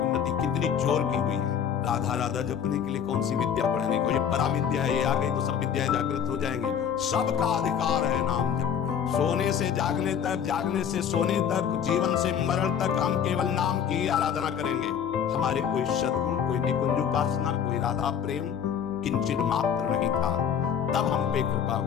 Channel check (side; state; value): right; quieter; 8.2 dB